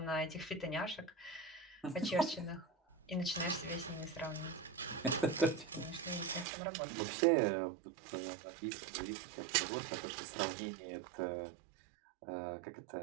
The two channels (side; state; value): left; drops out; at 6.5 s